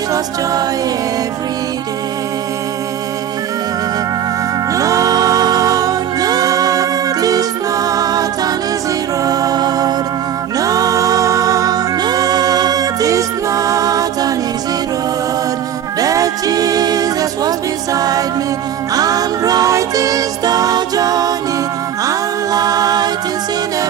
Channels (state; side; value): quieter; left; 9.7 dB